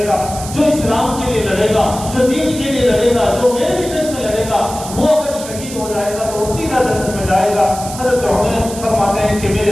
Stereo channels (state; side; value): noise; right; hiss, 12 dB below the sound